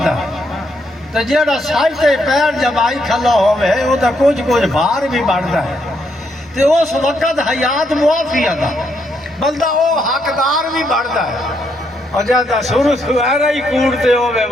تو جیڑا سائتے پیر جب آئی کھلا ہوئے وہ تو کچھ بھار بھی بڑھتا ہے تو اس وقت حیات معافی تھا بلدہ وہ حقدار بھی بڑھتا ہے اور جب سورو سوہرہ ہی کوڑتے ہوئے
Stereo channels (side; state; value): both; normal; correlation 0.76